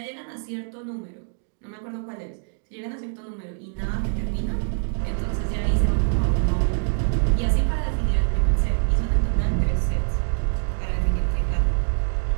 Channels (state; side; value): silent; left; digital silence